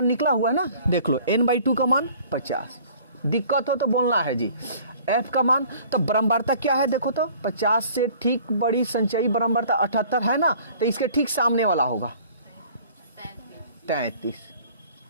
निकला हुआ है ना, देख लो n/2 का मान 50, दिक्कत हो तो बोलना है जी। F का मान, तो बारंबारता क्या है देखो तो, 50 से ठीक बड़ी संचयी बारंबारता 78 है ना, तो इसके ठीक सामने वाला होगा 33।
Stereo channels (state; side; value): inverted; both; correlation -0.51